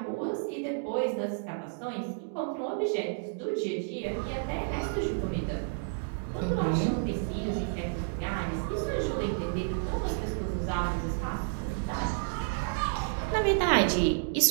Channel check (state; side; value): silent; left; digital silence